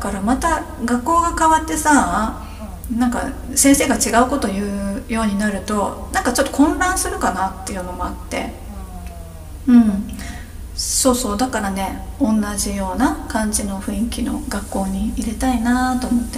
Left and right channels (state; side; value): identical; both; correlation 1.00